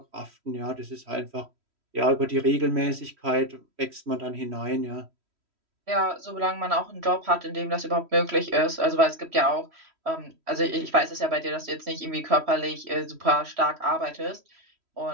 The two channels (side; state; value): left; late; 3.1 ms